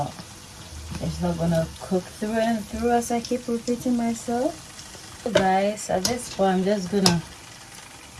it's not gonna cook through and through, as I keep repeating myself. So guys, at this point I'm just gonna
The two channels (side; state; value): both; identical; correlation 1.00